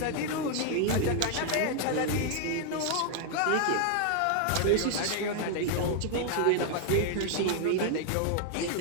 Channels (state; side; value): different; both; correlation 0.00